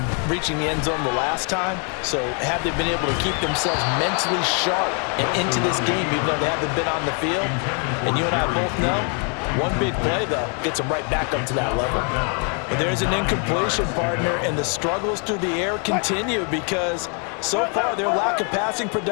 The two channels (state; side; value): quieter; right; 39.2 dB